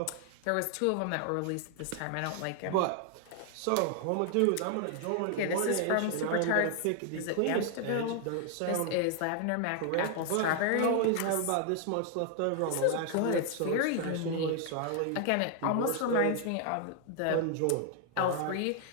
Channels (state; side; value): different; both; correlation 0.00